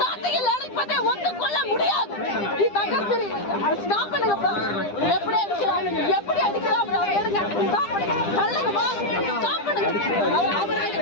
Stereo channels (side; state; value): right; late; 9.9 ms